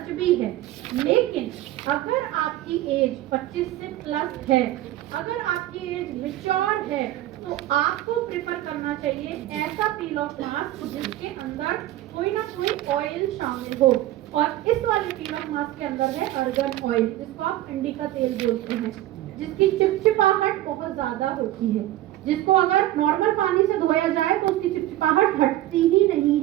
भी है। लेकिन अगर आपकी एज 25 से प्लस है, अगर आपकी एज मैच्योर है, तो आपको प्रेफर करना चाहिए ऐसा पील ऑफ मास्क जिसके अंदर कोई ना कोई ऑयल शामिल हो। और इस वाले पील ऑफ मास्क के अंदर है अर्गन ऑयल, जिसको आप अंडी का तेल बोलते हैं, जिसकी चिपचिपाहट बहुत ज्यादा होती है, जिसको अगर नॉर्मल पानी से धोया जाए तो उसकी चिपचिपाहट हटती ही नहीं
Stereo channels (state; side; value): quieter; left; 14.8 dB